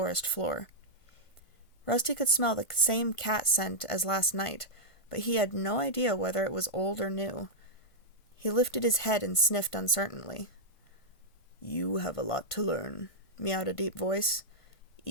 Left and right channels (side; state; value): right; late; 1.5 ms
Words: floor. Rusty could smell the same cat scent as last night, but he had no idea whether it was old or new. He lifted his head and sniffed uncertainly. "You have a lot to learn," meowed a deep voice.